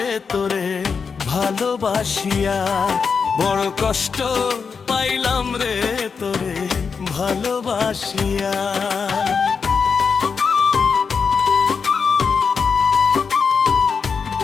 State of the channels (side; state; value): right; quieter; 5.6 dB